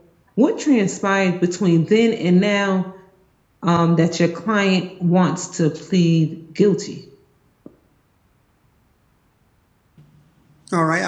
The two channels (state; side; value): identical; both; correlation 1.00